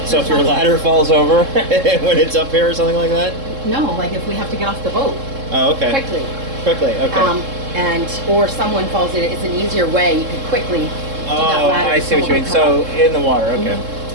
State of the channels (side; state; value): left; late; 3.7 ms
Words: So if your ladder falls over when it's up here or something like that? No, like if we have to get off the boat Oh, okay. quickly. Quickly, okay. Or someone falls in it, it's an easier way. You can quickly do that Oh, ladder. I see what you mean. Someone will So in the water, okay.